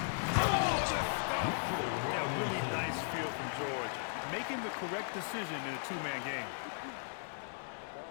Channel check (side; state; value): right; silent; digital silence